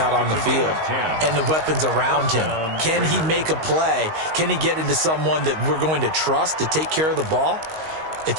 on the field and the weapons around him. Can he make a play? Can he get into someone that we're going to trust to take care of the ball? If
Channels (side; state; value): left; late; 19 ms